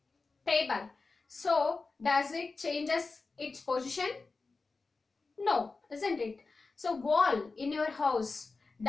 table. So does it changes its position? No, isn't it? So wall in your house,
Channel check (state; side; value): quieter; right; 4.0 dB